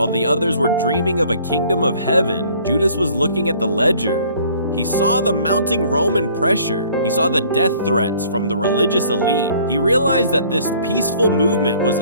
the others were dreaming of a kingdom of heaven, Judas was looking at the ledger. He saw the mounting Roman pressure. He saw the death threats from the religious elite. He realized that this peaceful movement was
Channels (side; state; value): both; inverted; correlation -0.56